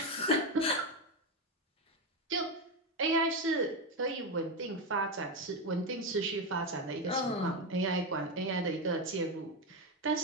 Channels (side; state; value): both; normal; correlation 0.12